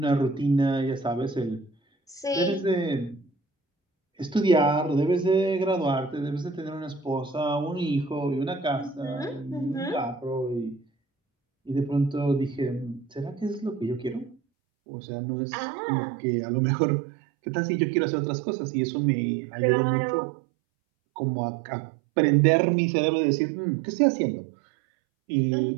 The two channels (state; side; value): drops out; left; at 14.4 s